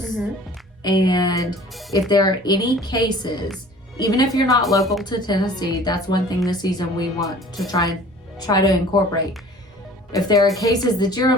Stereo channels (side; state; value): both; normal; correlation 0.48